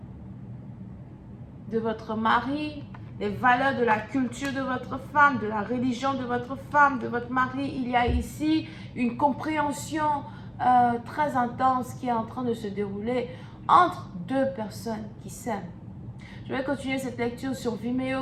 de votre mari, les valeurs de la culture de votre femme, de la religion de votre femme, de votre mari. Il y a ici une compréhension très intense qui est en train de se dérouler entre deux personnes qui s'aiment. Je vais continuer cette lecture sur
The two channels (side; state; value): both; identical; correlation 1.00